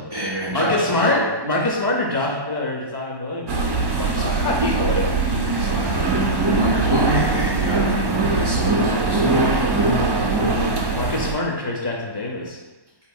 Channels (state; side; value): late; left; 1.1 ms